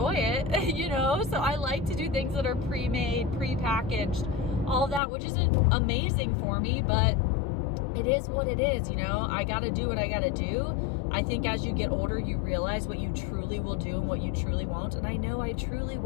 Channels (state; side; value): drops out; right; at 5.0 s